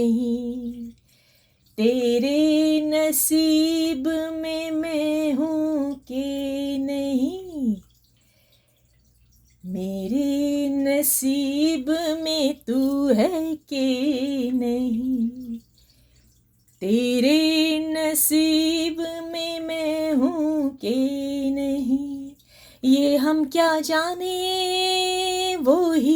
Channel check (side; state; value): both; identical; correlation 1.00